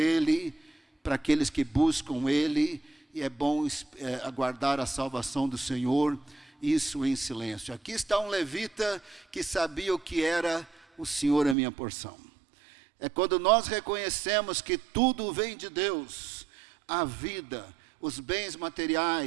para aqueles que buscam Ele, e é bom aguardar a salvação do Senhor, isso em silêncio. Aqui está um levita que sabia o que era o Senhor é minha porção. É quando nós reconhecemos que tudo vem de Deus, a vida, os bens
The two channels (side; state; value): left; drops out; at 11.6 s